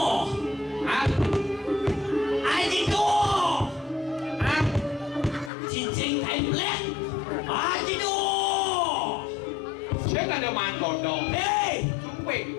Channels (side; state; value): right; drops out; at 5.5 s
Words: Ah. ajido, cincin kain black, ajido. Saya ada mantor dong. Hey, Sumpik.